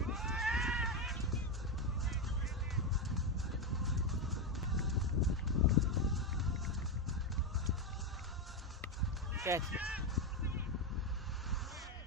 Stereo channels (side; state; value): both; normal; correlation 0.09